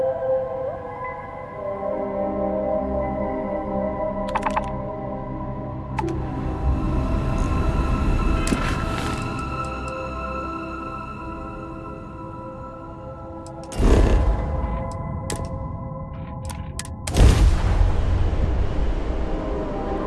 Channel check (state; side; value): identical; both; correlation 1.00